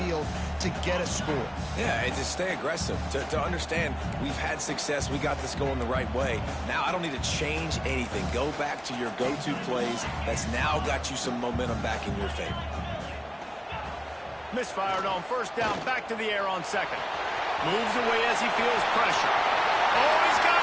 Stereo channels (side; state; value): both; identical; correlation 1.00